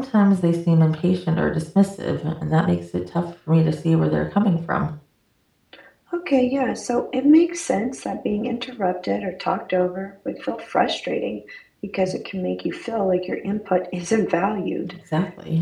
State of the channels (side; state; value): both; identical; correlation 1.00